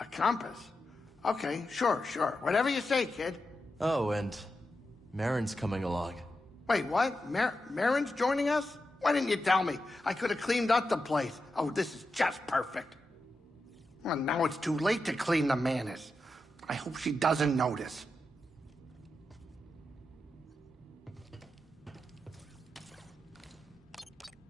compass? Okay, sure. Whatever you say, kid. Oh, and Marin's coming along. Wait, what? Marin's joining us? Why didn't you tell me? I could have cleaned up the place. Oh, this is just perfect. Well, now it's too late to clean the Manus. I hope she doesn't notice.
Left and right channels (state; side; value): normal; both; correlation 0.88